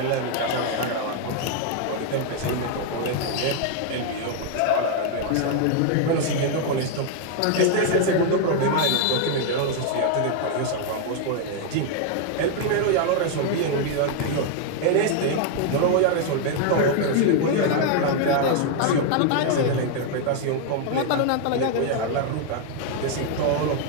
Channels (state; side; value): different; both; correlation 0.00